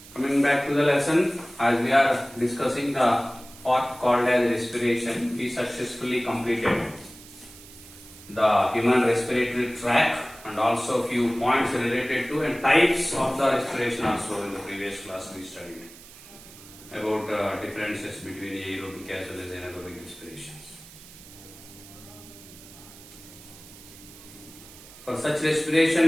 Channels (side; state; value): right; noise; hiss, 19 dB below the sound